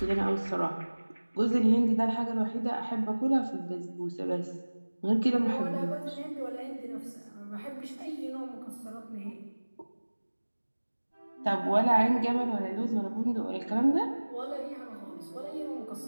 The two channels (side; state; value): both; inverted; correlation -1.00